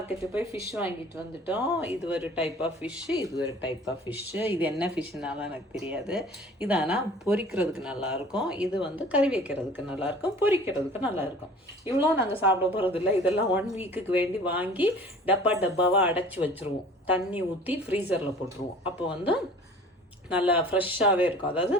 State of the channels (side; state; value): both; normal; correlation 0.46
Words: போய் fish வாங்கிட்டு வந்துட்டோம். இது ஒரு டைப் ஆஃப் ஃபிஷ்ஷு, இது ஒரு டைப் ஆஃப் ஃபிஷ்ஷு. இது என்ன ஃபிஷ்ஷுனாலும் எனக்கு தெரியாது. இது ஆனால் பொரிக்கிறதுக்கு நல்லாயிருக்கும், இது வந்து கறி வைக்கிறதுக்கு நல்லாயிருக்கும், பொரிக்கிறதுக்கு நல்லாயிருக்கும். இவ்வளோ நாங்கள் சாப்பிட போகிறதில்ல. இதெல்லாம் 1 வீக்குக்கு வேண்டி வாங்கி டப்பாவாக அடைச்சி வச்சுருவோம். தண்ணி ஊற்றி ஃப்ரீசரில் போட்டுருவோம். அப்போ வந்து நல்லா ஃப்ரெஷ்ஷாகவே இருக்கும். அதாவது